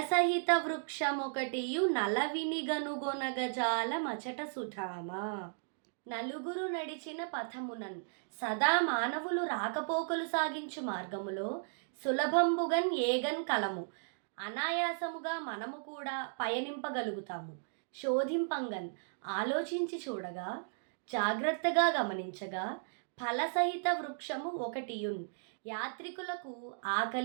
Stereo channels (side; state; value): left; silent; digital silence